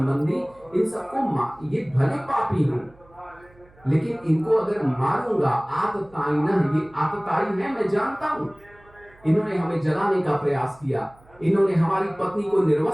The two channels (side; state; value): right; noise; hum, 28 dB below the sound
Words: इन सबको ये भले पापी हों, लेकिन इनको अगर मारूंगा आततायिन, ये आततायी है मैं जानता हूं। इन्होंने हमें जलाने का प्रयास किया, इन्होंने हमारी पत्नी को